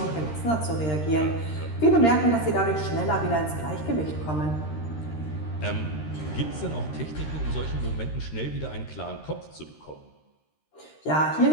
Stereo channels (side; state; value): right; late; 13 ms